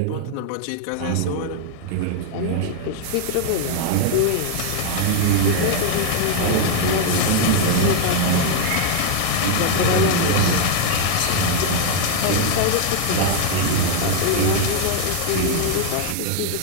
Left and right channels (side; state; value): both; different; correlation 0.00